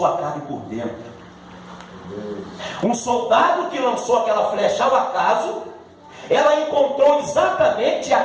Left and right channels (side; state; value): both; identical; correlation 1.00